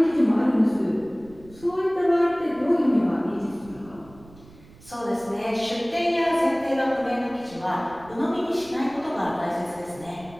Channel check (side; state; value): right; noise; rumble, 23 dB below the sound